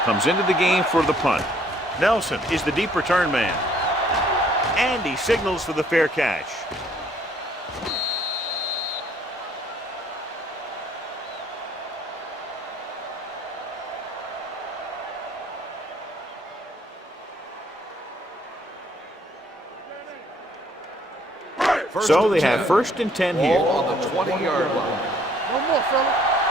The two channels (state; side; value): normal; both; correlation 0.62